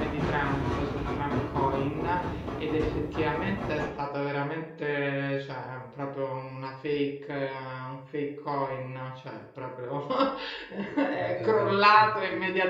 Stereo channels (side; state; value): both; identical; correlation 1.00